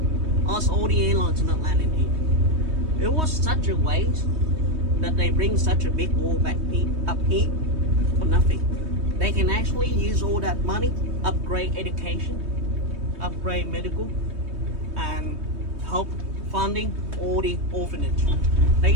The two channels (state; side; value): late; left; 3.2 ms